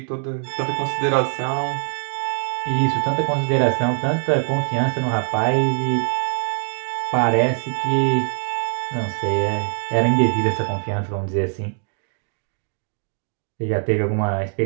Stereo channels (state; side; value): silent; left; digital silence